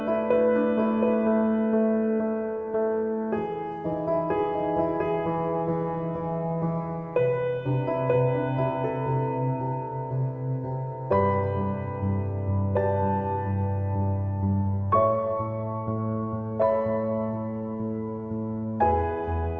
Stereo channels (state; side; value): identical; both; correlation 1.00